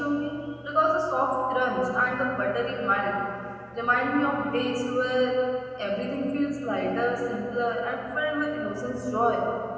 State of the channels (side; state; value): both; identical; correlation 1.00